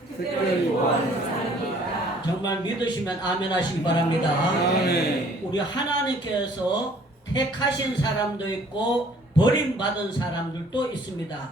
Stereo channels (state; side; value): normal; both; correlation 0.57